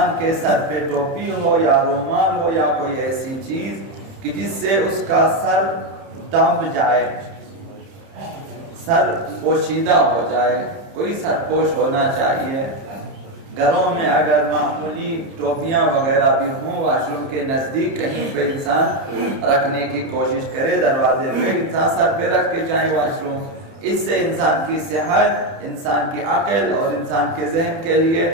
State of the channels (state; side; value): late; left; 30 ms